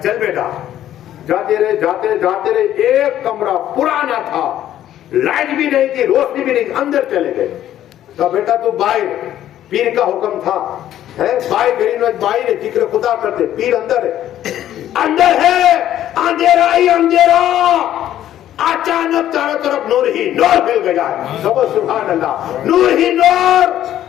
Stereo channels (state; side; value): quieter; right; 12.0 dB